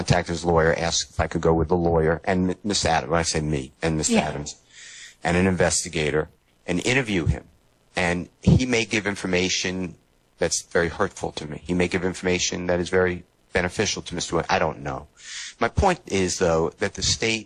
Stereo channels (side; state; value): both; identical; correlation 1.00